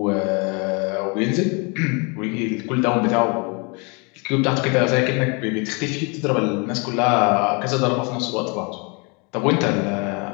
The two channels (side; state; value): right; quieter; 32.0 dB